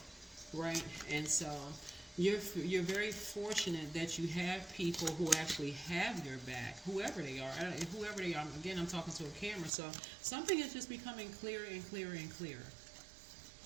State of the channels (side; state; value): left; drops out; at 9.7 s